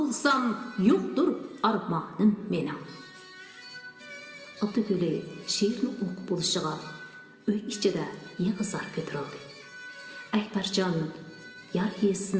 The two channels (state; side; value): identical; both; correlation 1.00